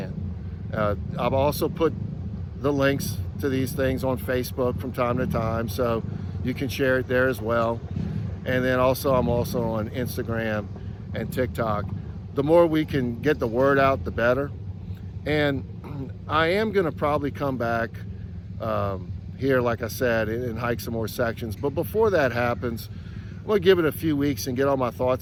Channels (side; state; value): both; identical; correlation 1.00